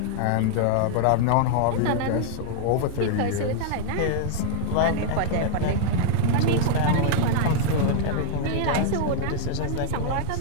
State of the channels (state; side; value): different; both; correlation 0.00